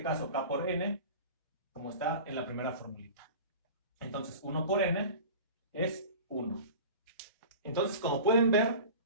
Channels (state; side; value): inverted; both; correlation -0.37